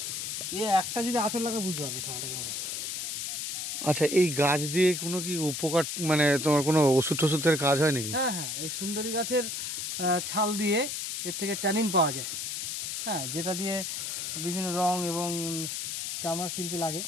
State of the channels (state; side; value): noise; left; hiss, 4 dB below the sound